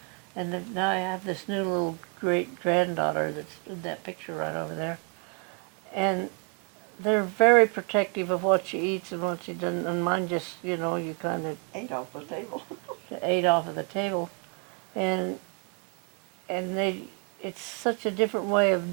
And then now I have this new little great granddaughter that's in that picture right over there. And they're very protective of what she eats and what she doesn't. And mine just, you know, you kind of Ate off the table. ate off of the table. And it's such a different way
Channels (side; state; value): left; quieter; 35.8 dB